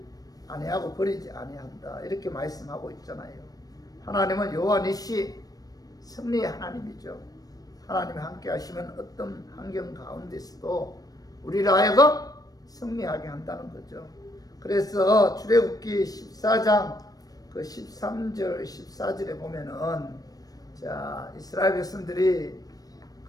아니하고 버리지 아니한다. 이렇게 말씀하고 있잖아요. 하나님은 여호와 니시 승리의 하나님이죠. 하나님이 함께 하시면 어떤 환경 가운데서도 우리를 하여금 승리하게 한다는 거죠. 그래서 출애굽기 14장 13절 14절에 보면은 자, 이스라엘 백성들이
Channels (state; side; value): late; right; 0.18 ms